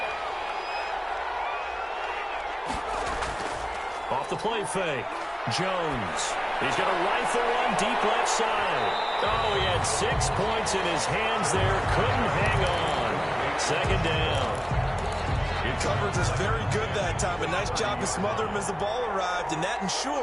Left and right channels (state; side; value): identical; both; correlation 1.00